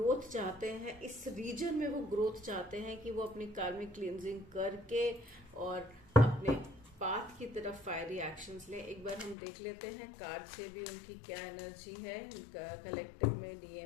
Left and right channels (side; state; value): right; drops out; at 9.3 s